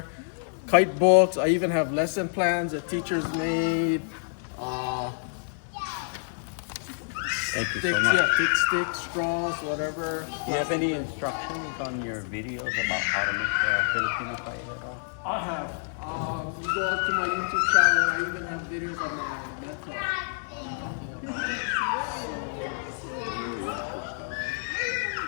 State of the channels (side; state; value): right; silent; 59 dB below the other